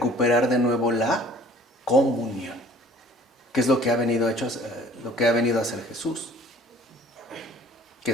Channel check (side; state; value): both; normal; correlation 0.52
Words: de nuevo la comunión, que es lo que ha venido a hacer Jesús, que